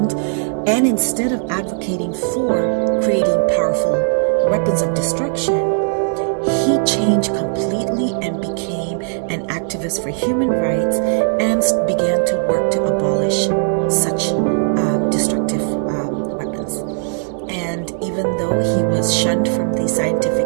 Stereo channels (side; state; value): left; silent; 67 dB below the other